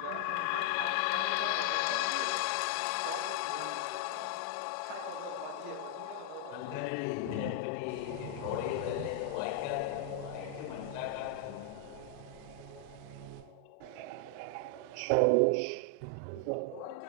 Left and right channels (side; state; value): both; different; correlation 0.00